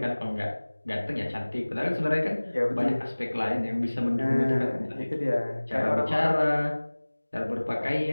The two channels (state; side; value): inverted; both; correlation -1.00